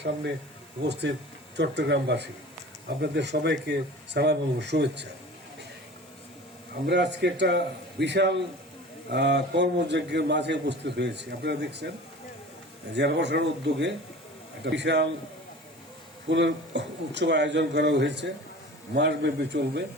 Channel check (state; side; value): normal; both; correlation 0.40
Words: সামনে উপস্থিত চট্টগ্রামবাসী, আপনাদের সবাইকে সালাম এবং শুভেচ্ছা। আমরা আজকে একটা বিশাল কর্মযজ্ঞের মাঝে উপস্থিত হয়েছি। আপনারা দেখছেন জেলা প্রশাসনের উদ্যোগে একটা বিশাল ফুলের উৎসব আয়োজন করা হয়েছে, মাসব্যাপী চলবে।